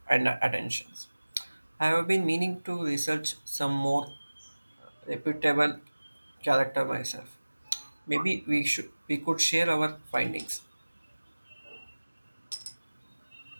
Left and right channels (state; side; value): inverted; both; correlation -1.00